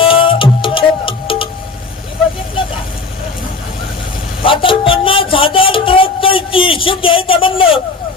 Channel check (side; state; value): right; quieter; 4.2 dB